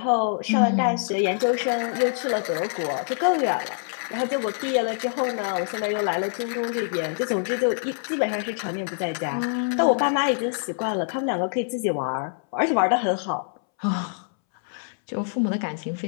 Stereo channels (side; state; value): right; silent; 62 dB below the other